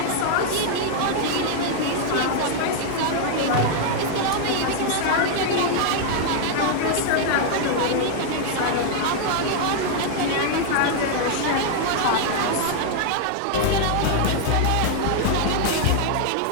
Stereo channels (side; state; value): both; different; correlation 0.00